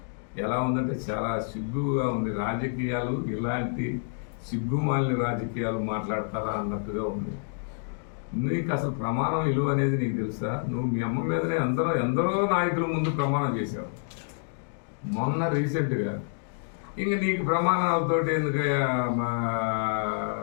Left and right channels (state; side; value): silent; right; digital silence